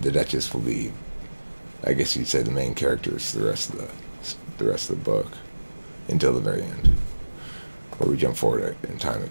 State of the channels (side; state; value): both; inverted; correlation -1.00